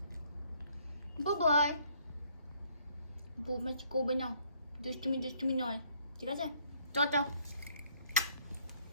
বাই বৌমাছি করবে না, দুষ্টুমি নয়, ঠিক আছে? টাটা।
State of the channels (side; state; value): both; inverted; correlation -0.65